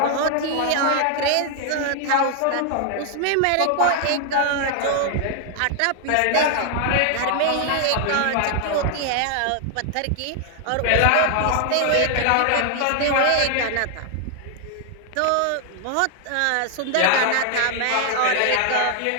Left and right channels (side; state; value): both; different; correlation 0.00